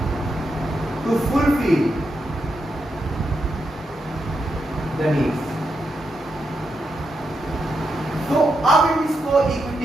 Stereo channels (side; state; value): both; normal; correlation 0.84